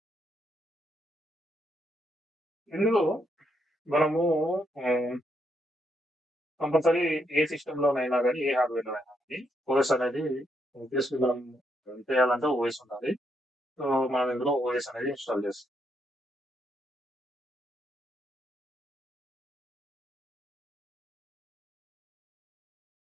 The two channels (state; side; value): normal; both; correlation 0.77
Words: ఇందులో మనము కంపల్సరీ ఏ సిస్టంలోనైనా కానీ ఏ హార్డ్వేర్లోనైనా కానీ ఓఎస్ అనేది ఆబ్వియస్లీ మనం రన్ చేయాలంటే ఓఎస్ ఉండాలి. సో మనం ఇందులో ఓఎస్ అనేది ఇన్స్టాల్ చేస్తాం.